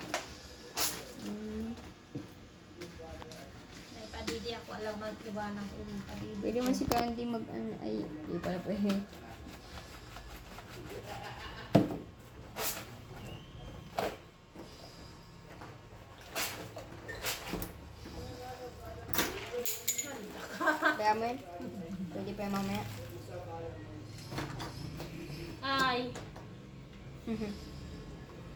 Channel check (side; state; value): both; identical; correlation 1.00